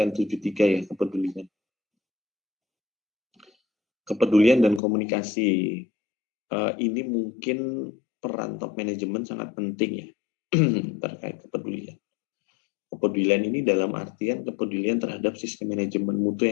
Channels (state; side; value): drops out; right; at 4.8 s